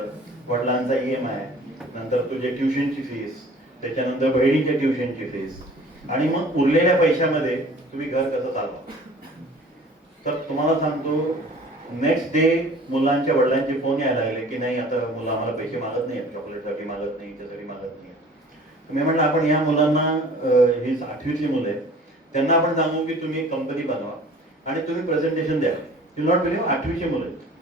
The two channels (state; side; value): normal; both; correlation 0.48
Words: वडिलांचा EMI, नंतर तुझे ट्युशनची फीस, त्याच्यानंतर बहिणीच्या ट्युशनची फीस, आणि मग उरलेल्या पैशामध्ये तुम्ही घर कसं चालवा. तर तुम्हाला सांगतो, नेक्स्ट डे मुलांच्या वडिलांचे फोन यायला लागले की नाही आता मुलं आम्हाला पैसे मागत नाही, चॉकलेटसाठी मागत नाही, त्यासाठी मागत नाही. मी म्हटलं आपण या मुलांना, ही 8वीतली मुलं आहेत, त्यांना आपण सांगू की तुम्ही कंपनी बनवा आणि तुम्ही प्रेझेंटेशन द्या. यू नॉट बिलीव्ह, 8वीची मुलं आहेत.